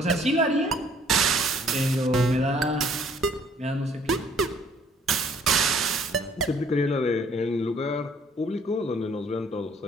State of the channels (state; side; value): normal; both; correlation 0.59